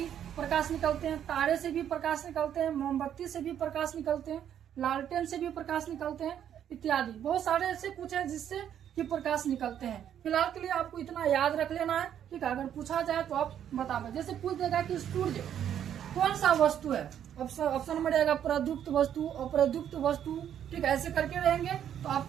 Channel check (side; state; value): left; quieter; 9.7 dB